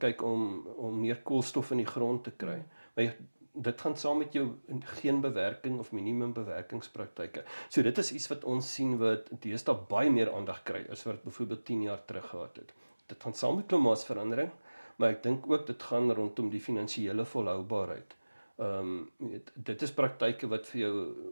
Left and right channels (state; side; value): inverted; both; correlation -1.00